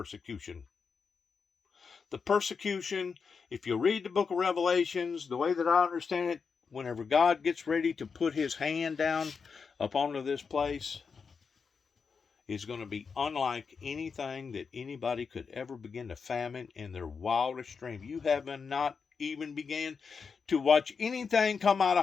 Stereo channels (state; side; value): quieter; right; 5.5 dB